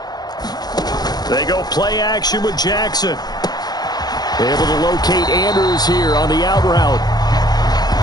They go play action with Jackson. Able to locate Andrews here on the out route.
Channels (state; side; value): late; right; 0.19 ms